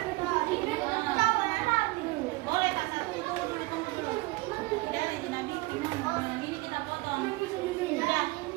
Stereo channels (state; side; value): quieter; left; 21.8 dB